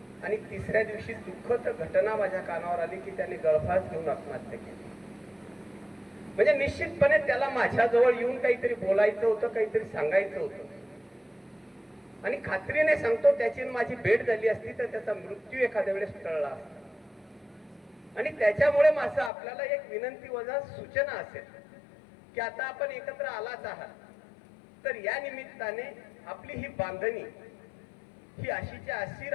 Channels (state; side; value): drops out; right; at 19.3 s